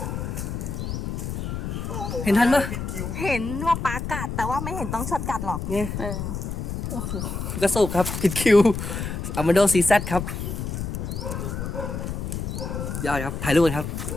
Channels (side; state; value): left; noise; rumble, 4 dB below the sound